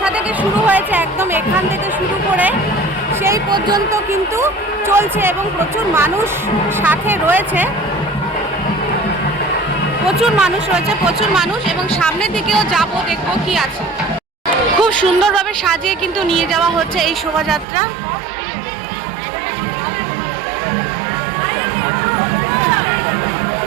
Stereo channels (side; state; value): left; drops out; at 17.7 s